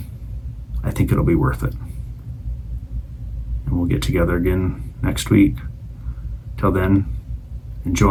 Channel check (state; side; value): identical; both; correlation 1.00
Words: I think it'll be worth it. And we'll get together again next week. Till then,